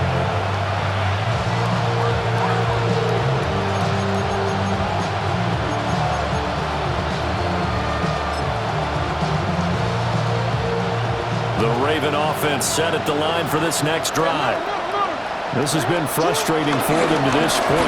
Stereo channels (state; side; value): identical; both; correlation 1.00